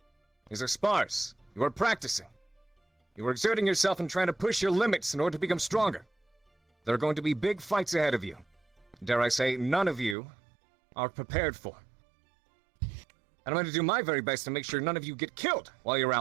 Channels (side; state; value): left; drops out; at 10.2 s